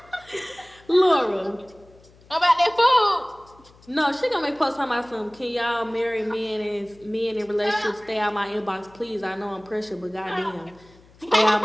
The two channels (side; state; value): left; noise; hum, 27 dB below the sound